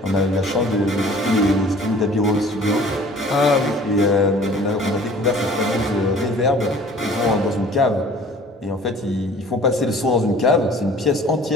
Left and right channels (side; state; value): both; normal; correlation 0.49